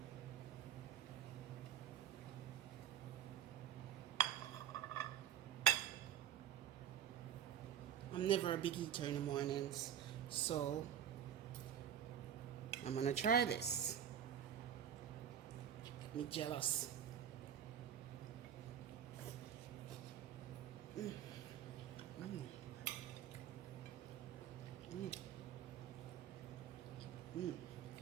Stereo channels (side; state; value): left; quieter; 9.6 dB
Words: I'm never a big eater in the mornings, so I'm gonna try this. I'm jealous. Mm. Mm. Mm. Mm.